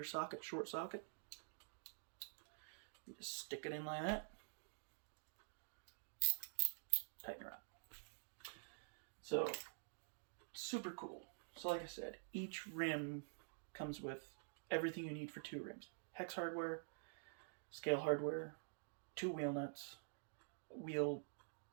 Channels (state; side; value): silent; left; digital silence